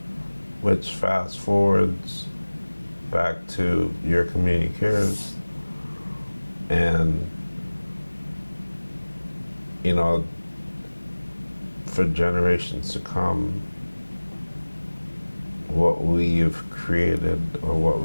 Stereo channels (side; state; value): both; inverted; correlation -1.00